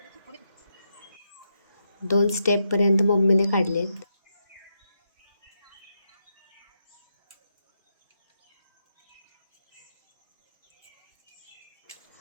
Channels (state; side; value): inverted; both; correlation -0.83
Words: 2 स्टेपपर्यंत मम्मीने काढलेत.